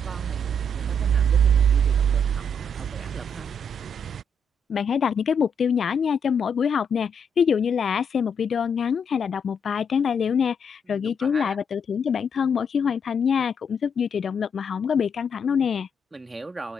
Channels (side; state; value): both; normal; correlation 0.75